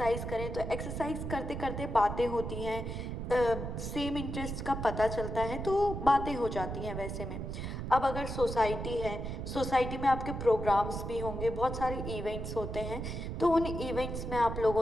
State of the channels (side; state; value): right; noise; rumble, 5 dB below the sound